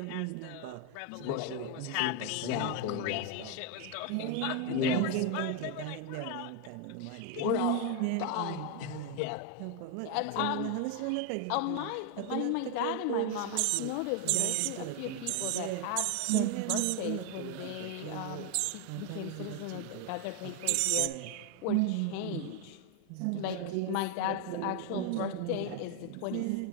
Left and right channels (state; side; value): different; both; correlation 0.01